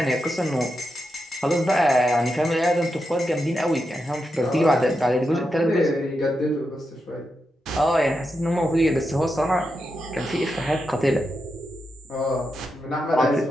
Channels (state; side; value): normal; both; correlation 0.86